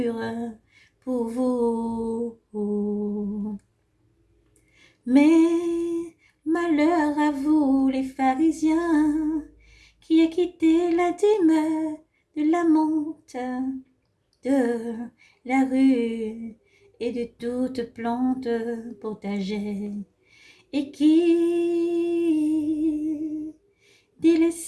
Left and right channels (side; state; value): both; identical; correlation 1.00